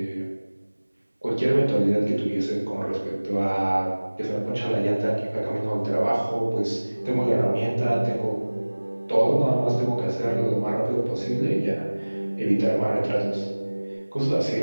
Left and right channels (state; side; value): inverted; both; correlation -1.00